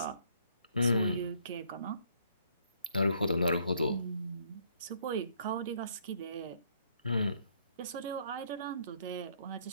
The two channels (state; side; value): inverted; both; correlation -0.67